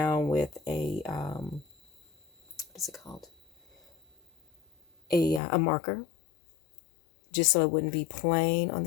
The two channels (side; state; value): right; drops out; at 5.4 s